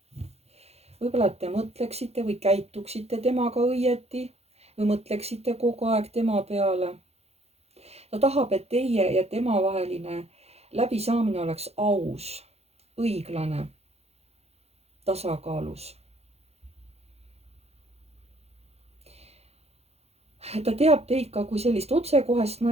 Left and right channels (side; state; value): left; late; 0.30 ms